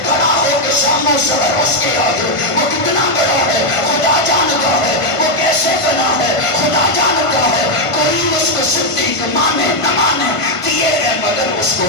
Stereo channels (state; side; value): late; right; 1.5 ms